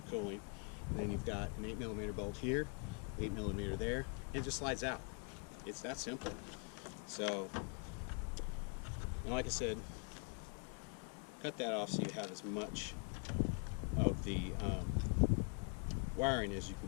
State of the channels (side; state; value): right; quieter; 36.5 dB